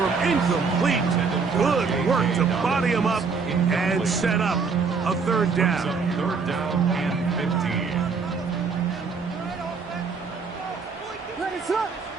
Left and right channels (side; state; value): left; quieter; 5.0 dB